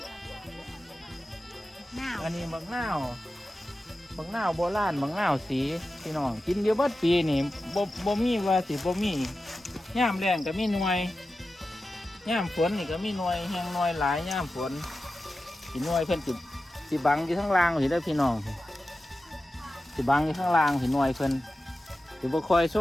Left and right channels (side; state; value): both; normal; correlation 0.93